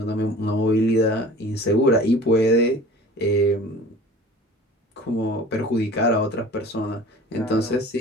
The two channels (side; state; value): both; normal; correlation 0.43